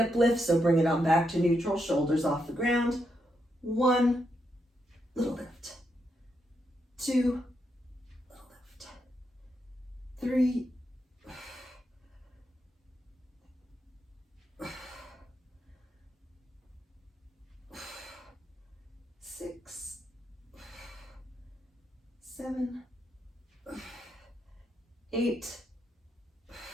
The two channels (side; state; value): both; normal; correlation 0.81